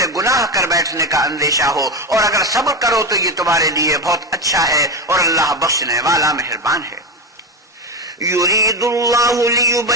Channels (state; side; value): normal; both; correlation 0.17